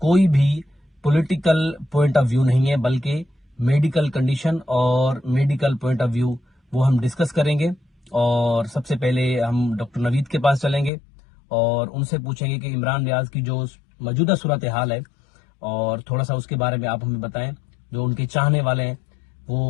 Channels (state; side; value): drops out; right; at 10.9 s